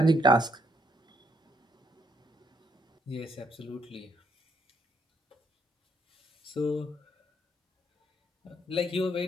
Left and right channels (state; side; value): normal; both; correlation 0.71